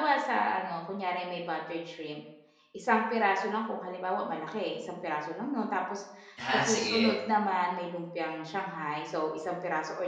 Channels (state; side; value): identical; both; correlation 1.00